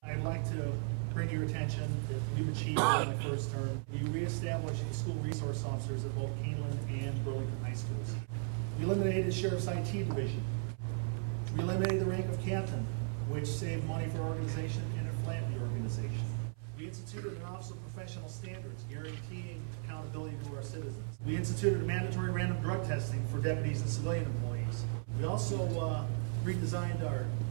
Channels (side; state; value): left; silent; 54 dB below the other